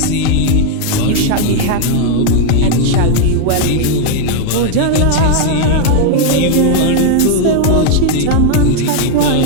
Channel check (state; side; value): different; both; correlation 0.00